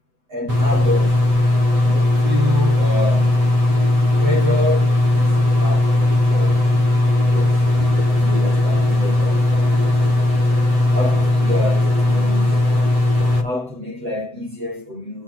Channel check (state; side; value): late; left; 7.9 ms